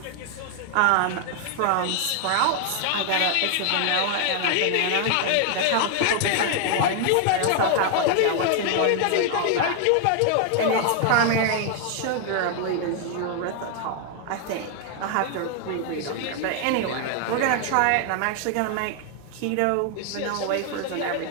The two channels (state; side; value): different; both; correlation 0.00